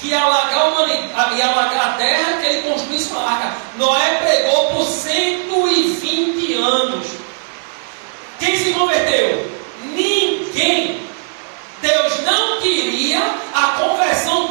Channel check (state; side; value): silent; left; digital silence